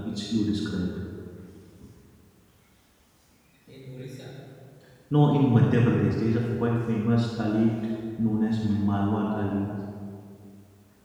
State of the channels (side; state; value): both; identical; correlation 1.00